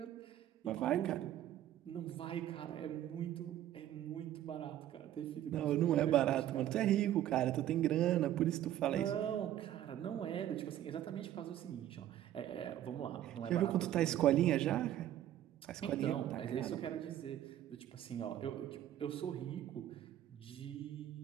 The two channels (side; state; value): left; quieter; 12.2 dB